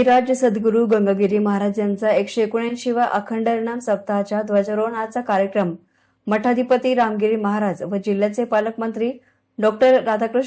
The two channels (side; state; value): both; identical; correlation 1.00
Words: सद्गुरू गंगागिरी महाराज यांचा 179वा अखंड हरिनाम सप्ताहाच्या ध्वजारोहणाचा कार्यक्रम मठाधिपती रामगिरी महाराज व जिल्ह्याचे पालकमंत्री डॉ.